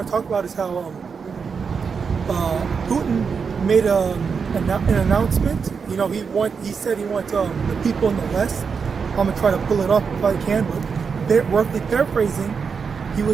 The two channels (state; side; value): quieter; left; 5.8 dB